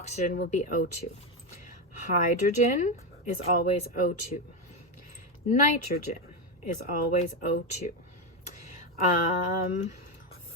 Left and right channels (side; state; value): both; normal; correlation 0.10